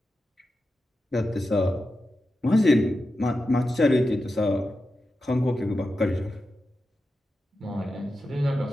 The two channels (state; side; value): normal; both; correlation 0.91